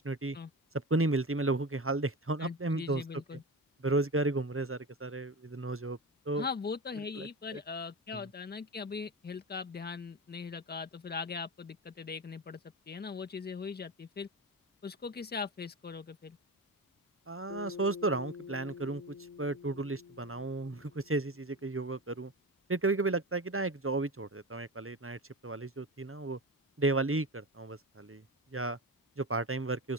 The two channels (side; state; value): both; normal; correlation 0.25